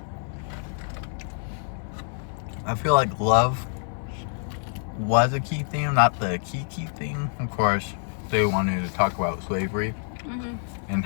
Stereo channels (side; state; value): right; silent; 59 dB below the other